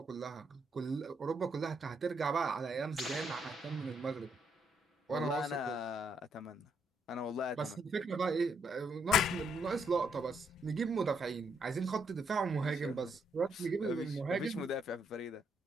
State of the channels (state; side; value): normal; both; correlation 0.74